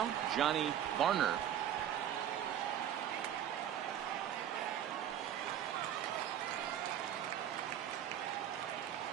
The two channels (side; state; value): left; quieter; 10.3 dB